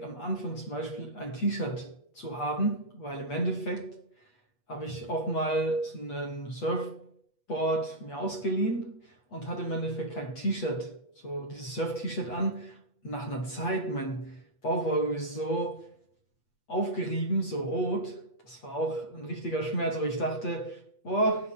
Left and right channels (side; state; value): right; late; 8.3 ms